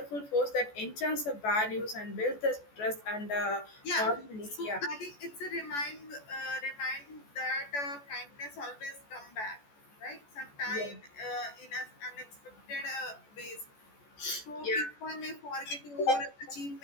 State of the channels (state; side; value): late; right; 14 ms